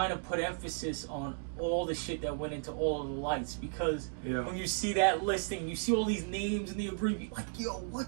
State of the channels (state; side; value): silent; left; digital silence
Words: of put emphasis on all the shit that went into all of the lights, because when you see that listing, you see all these names and the abbreviation, like, yo,